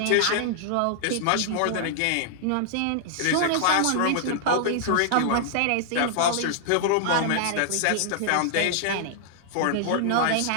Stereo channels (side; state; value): both; different; correlation -0.01